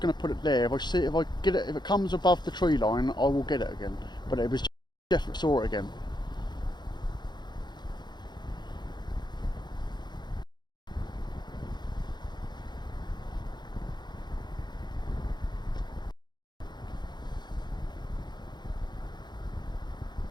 going to put it there. If I get it, if it comes above the tree line, I will get it again. But it was definitely saw it again.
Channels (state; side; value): late; right; 0.21 ms